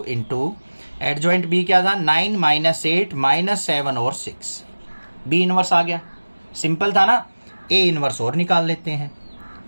इंटू एडजॉइंट बी क्या था 9 -8 -7 और 6। बी इनवर्स आ गया, सिंपल था ना। ए इनवर्स और निकाल लेते हैं।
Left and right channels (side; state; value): both; inverted; correlation -1.00